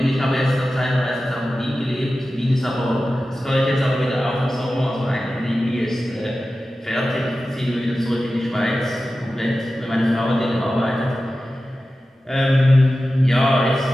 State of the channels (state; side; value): normal; both; correlation 0.94